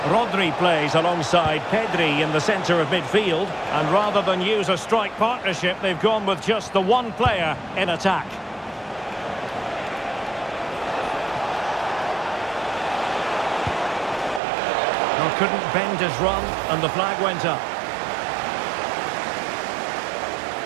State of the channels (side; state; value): left; drops out; at 14.4 s